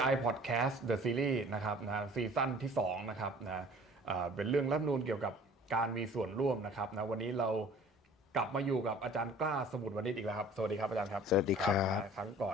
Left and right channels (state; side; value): normal; both; correlation 0.49